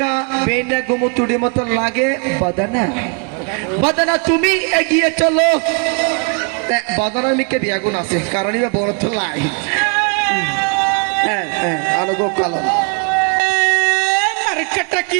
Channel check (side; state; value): left; quieter; 35.3 dB